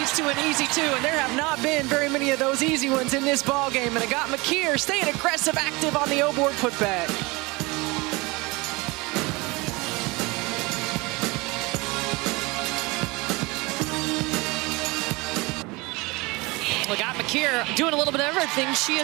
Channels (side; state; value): left; quieter; 24.5 dB